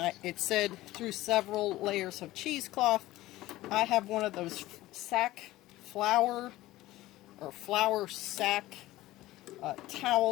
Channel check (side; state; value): right; quieter; 16.9 dB